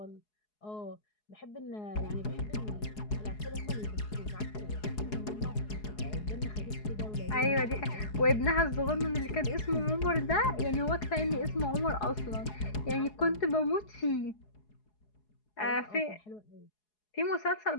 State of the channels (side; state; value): right; late; 4.8 ms